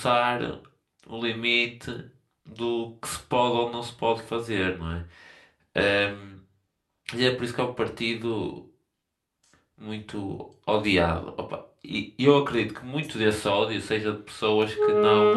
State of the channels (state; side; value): identical; both; correlation 1.00